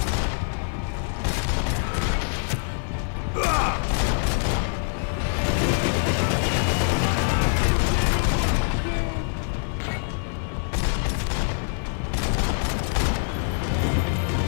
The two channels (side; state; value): right; silent; digital silence